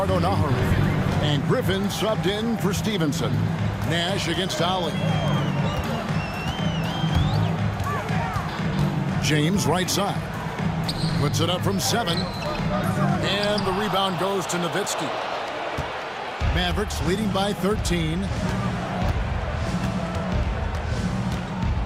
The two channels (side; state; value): both; identical; correlation 1.00